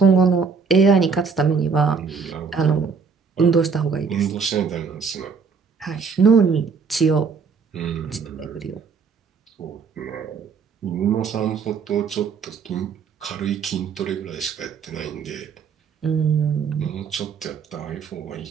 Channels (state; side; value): quieter; left; 5.6 dB